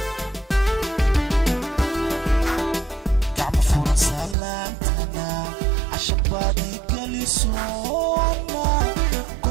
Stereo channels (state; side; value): drops out; left; at 4.4 s